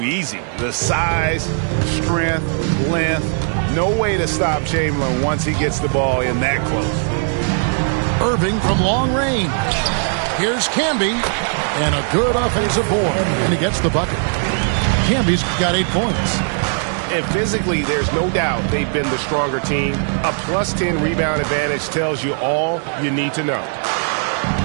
easy. The size, strength, length, no way to stop Chamberlain once he gets the ball in that close. Irving from long range. Here's Camby, and a good offensive board, and he gets the bucket. Camby's got 8 points. And physically, there's no doubt they've been the stronger team. A +10 rebound advantage tells you all you need to know.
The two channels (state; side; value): silent; left; 67 dB below the other